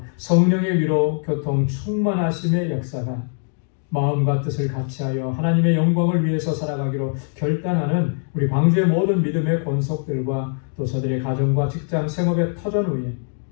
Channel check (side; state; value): right; silent; 61 dB below the other